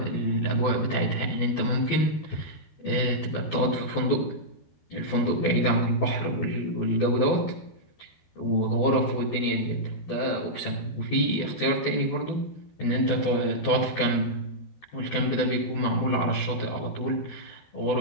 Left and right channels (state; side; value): late; right; 12 ms